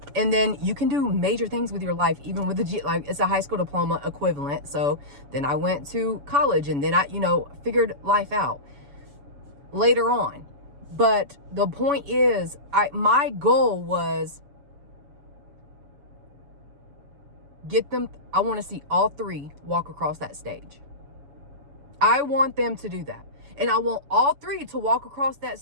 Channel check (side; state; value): left; late; 7.0 ms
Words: And then you can do major things with your life, even with the like it's a high school diploma equivalent. So then I went to college, and then I, figured life out later on. But the point is, my goal was get them. I want to see all three walk across that stage. I want them to do that. And I want all three to walk across that